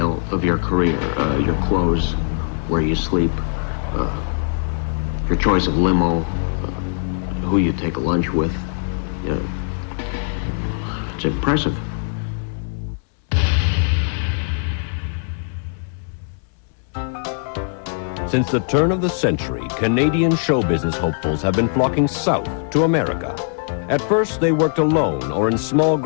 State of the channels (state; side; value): silent; right; 65 dB below the other